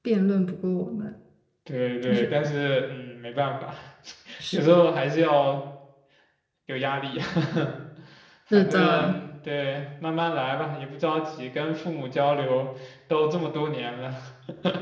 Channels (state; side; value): identical; both; correlation 1.00